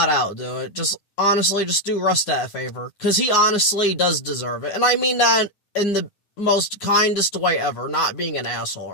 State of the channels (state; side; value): late; right; 10 ms